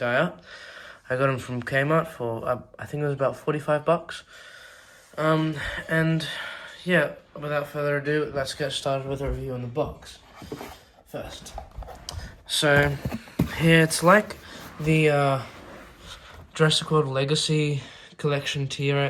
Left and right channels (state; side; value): identical; both; correlation 1.00